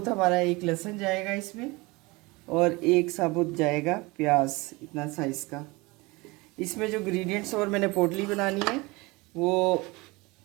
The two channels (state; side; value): quieter; left; 24.0 dB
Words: हमारा एक लहसुन जाएगा इसमें और एक साबुत जाएगा प्याज, इतना साइज़ का। इसमें जो इंग्रेडिएंट्स और मैंने पोटली बनानी है वो